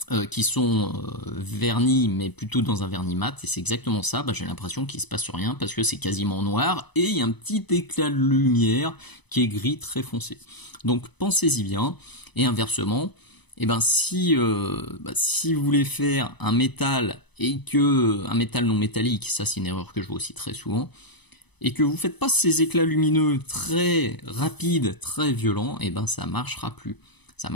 Qui sont vernis, mais plutôt dans un vernis mat, et c'est exactement ça. Bah, j'ai l'impression qu'il se passe rien parce que c'est quasiment noir et il y a un petit éclat de lumière qui est gris très foncé. Donc pensez-y bien. Et inversement, eh ben, si vous voulez faire un métal et que un métal non métallique, ça c'est une erreur que je vois aussi très souvent, et que vous faites pas ces éclats lumineux très rapides, très violents, eh ben ça marchera plus. Ça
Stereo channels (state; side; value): late; right; 0.99 ms